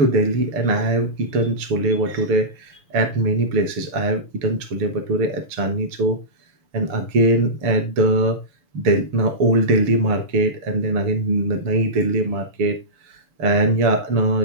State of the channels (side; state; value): left; late; 6.8 ms